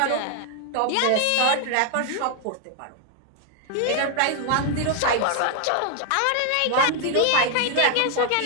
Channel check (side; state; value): both; different; correlation 0.01